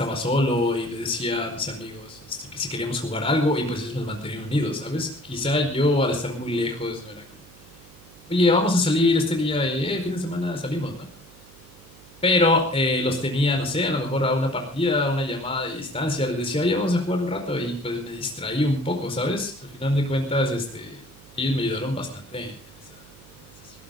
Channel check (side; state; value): right; noise; hum, 23 dB below the sound